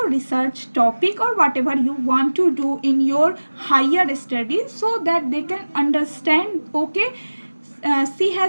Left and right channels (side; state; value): both; inverted; correlation -1.00